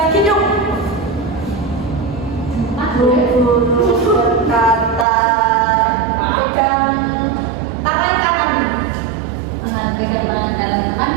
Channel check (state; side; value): drops out; left; at 5.1 s